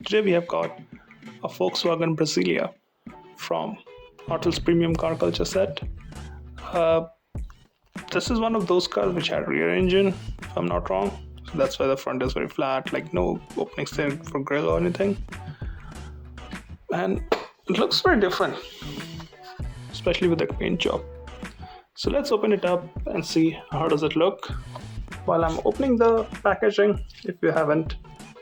Today we have got a Volkswagen Brasilia from Hotwheels Premium Car Culture set. Uh, this is one of those cars which had rear engine, if I'm not wrong. So that's why the front is very flat, like no openings there for grille or anything. And it looks very different, especially with the paint job. So let's open it up and see how does it look. While I'm opening the packaging, if you haven't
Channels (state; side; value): identical; both; correlation 1.00